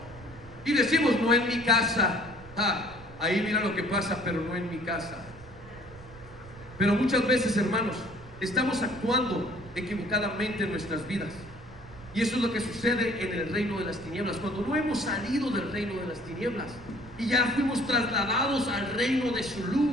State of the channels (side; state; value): right; noise; rumble, 19 dB below the sound